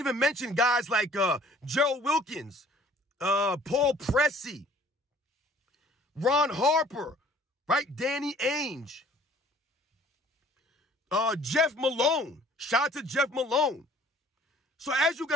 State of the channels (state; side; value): normal; both; correlation 0.54